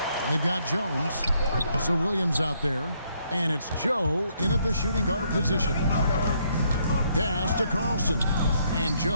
They've got Jones. Also Williams out there. And it's Joe in at the shooting guard position. Pass to Carlson. And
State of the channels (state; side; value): inverted; both; correlation -0.71